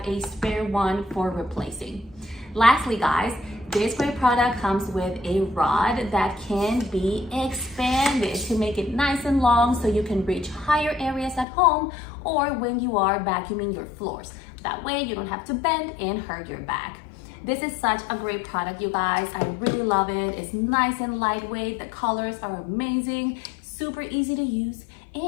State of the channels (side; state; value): right; drops out; at 11.5 s